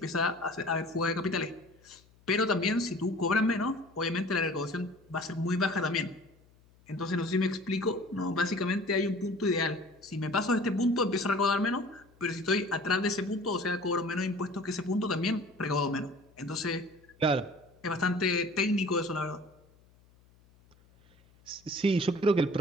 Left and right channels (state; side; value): noise; left; hum, 30 dB below the sound